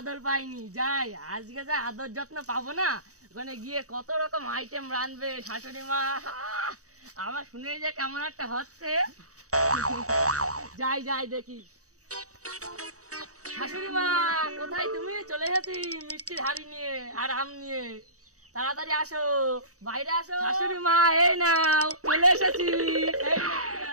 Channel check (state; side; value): late; left; 0.66 ms